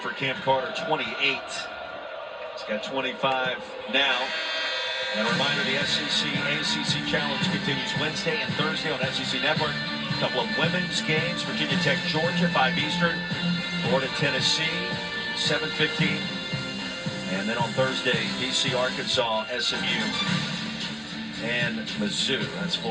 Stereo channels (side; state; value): both; identical; correlation 1.00